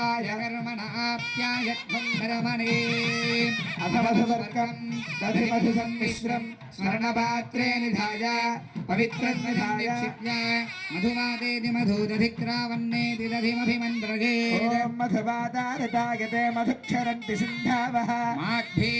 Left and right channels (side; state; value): both; identical; correlation 1.00